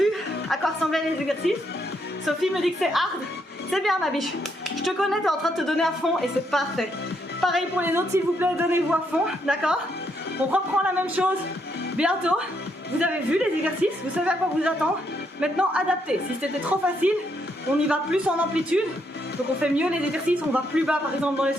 à quoi ressemblaient les exercices. Sophie me dit que c'est hard. C'est bien ma biche. Je te connais, t'es en train de te donner à fond et c'est parfait. Pareil pour les autres, s'il vous plaît, donnez-vous à fond, d'accord? On reprend la même chose bientôt. Vous avez vu les exercices, vous savez à quoi vous attendre. Maintenant, adaptez. Si c'était trop facile, on y va plus en amplitude. Donc on fait mieux les exercices, on va plus bas par exemple dans les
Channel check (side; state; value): both; normal; correlation 0.76